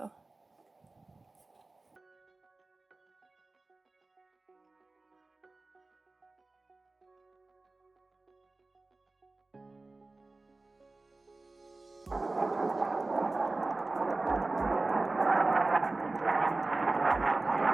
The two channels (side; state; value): left; quieter; 3.3 dB